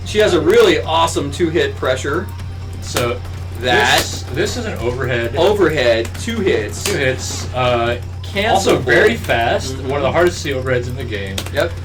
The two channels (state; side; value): identical; both; correlation 1.00